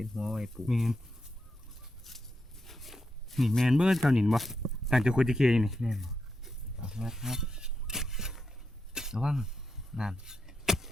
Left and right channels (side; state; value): both; normal; correlation 0.85